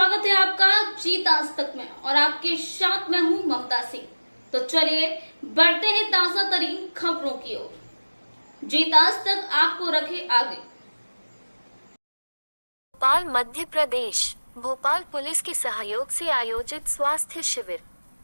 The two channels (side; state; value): both; inverted; correlation -1.00